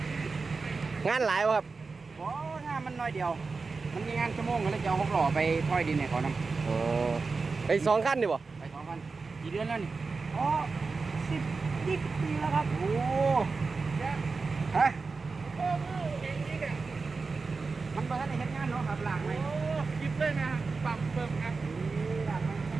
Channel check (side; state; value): left; quieter; 4.3 dB